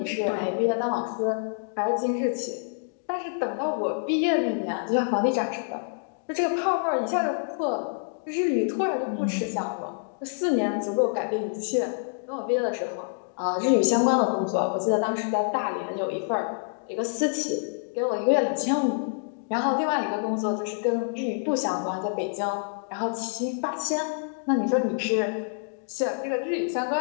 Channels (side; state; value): right; silent; digital silence